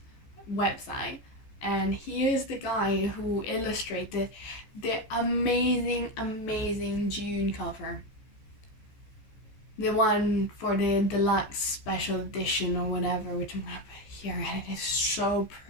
website. And he is the guy who illustrated the amazing June cover. The one for the deluxe special edition or whatever, which I'm gonna put here, and it is so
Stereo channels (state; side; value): late; right; 14 ms